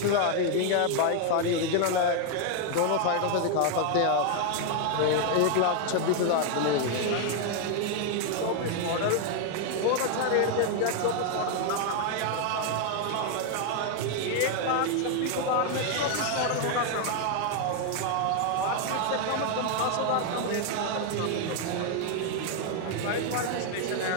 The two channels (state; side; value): different; both; correlation 0.00